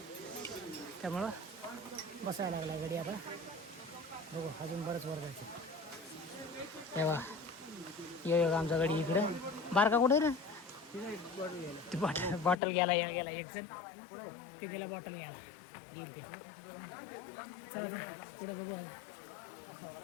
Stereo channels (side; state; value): right; drops out; at 12.6 s